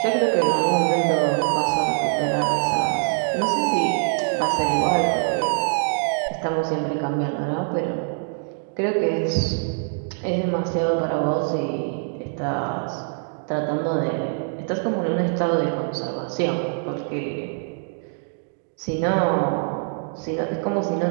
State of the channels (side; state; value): left; silent; 63 dB below the other